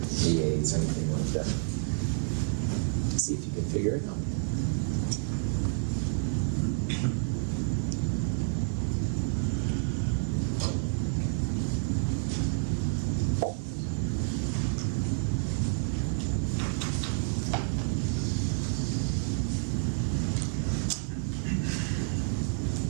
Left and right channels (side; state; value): left; silent; 58 dB below the other